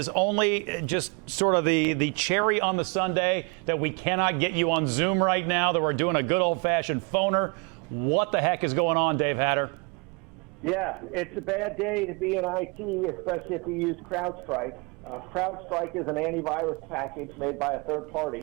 only just sort of the cherry on the sundae that we cannot get you on Zoom right now, that we're doing a good old-fashioned phoner. What the heck is going on, Dave Hatter? Yeah, it's a bad day to be in IT, especially if you use Crowdstrike. Crowdstrike is an antivirus package made by a third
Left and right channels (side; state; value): left; quieter; 31.4 dB